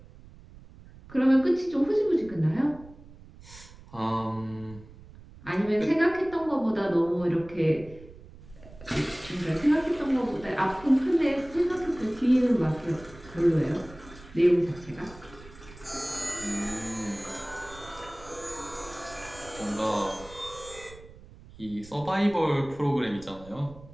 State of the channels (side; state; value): right; noise; rumble, 20 dB below the sound